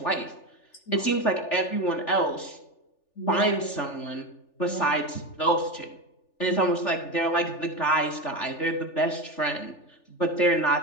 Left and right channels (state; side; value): late; right; 3.4 ms